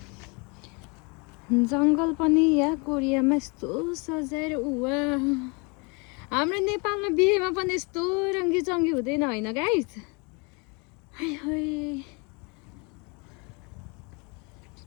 जङ्गल पनि यहाँ कोरियामा यस्तो सजाएर उवा। हाम्रो नेपालमा बिहेमा पनि यस्तो रङ्गी चङ्गी हुँदैन होइन गाइस? हाय हाय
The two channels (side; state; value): right; quieter; 31.2 dB